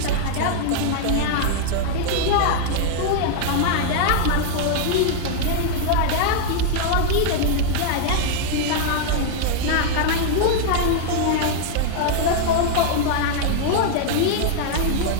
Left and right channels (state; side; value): different; both; correlation 0.00